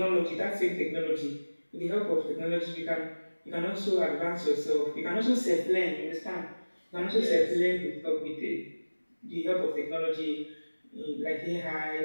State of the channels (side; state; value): both; inverted; correlation -1.00